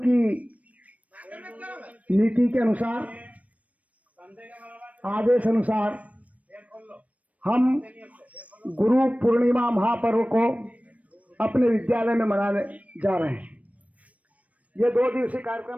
नीति के अनुसार, आदेश अनुसार हम गुरु पूर्णिमा महापर्व को अपने विद्यालय में मनाने जा रहे हैं। ये 2 दिवसीय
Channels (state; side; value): late; left; 0.068 ms